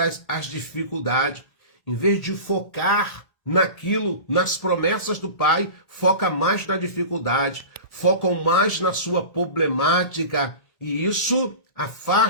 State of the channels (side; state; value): right; late; 1.7 ms